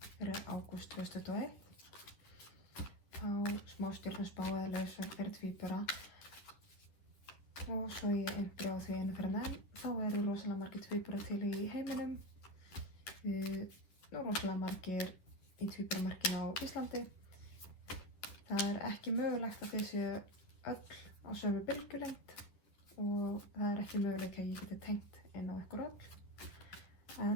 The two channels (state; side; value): late; right; 10 ms